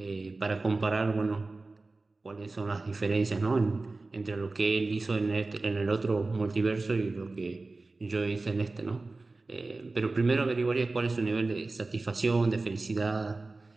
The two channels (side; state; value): left; quieter; 3.4 dB